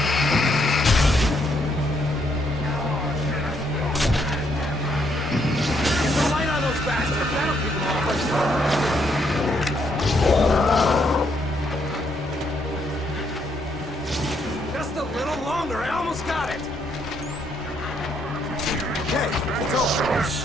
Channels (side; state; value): both; normal; correlation 0.73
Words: Bastard, that'll keep them off. Just a little longer, I almost got it. Okay, it's over.